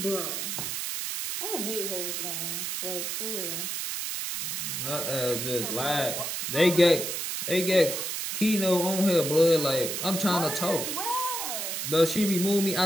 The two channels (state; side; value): noise; right; hiss, 3 dB below the sound